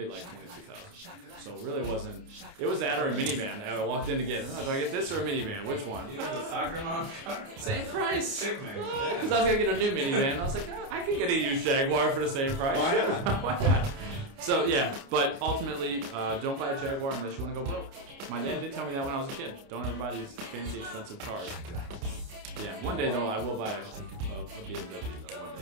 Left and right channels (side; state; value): left; late; 29 ms